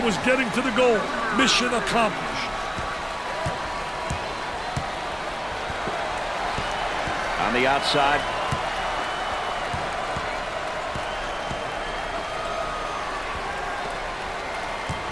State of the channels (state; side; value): identical; both; correlation 1.00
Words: was getting to the goal. Mission accomplished. On the outside.